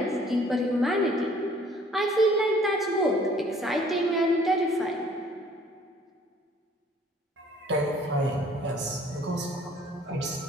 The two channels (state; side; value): normal; both; correlation 0.57